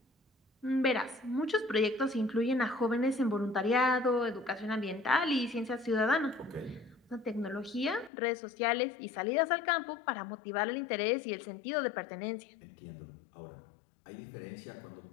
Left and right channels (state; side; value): drops out; right; at 8.1 s